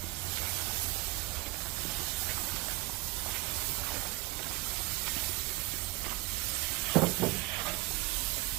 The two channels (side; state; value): left; quieter; 20.6 dB